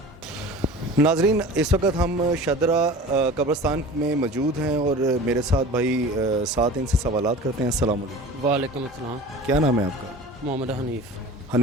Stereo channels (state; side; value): normal; both; correlation 0.38